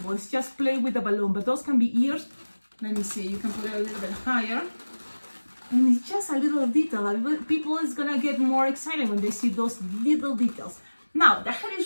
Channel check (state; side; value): inverted; both; correlation -1.00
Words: It's just play with the balloon, but those can be ears. Let me see. You can put it a little bit higher, and it's just a little detail. People is gonna get more excited when they see those little details. Now the head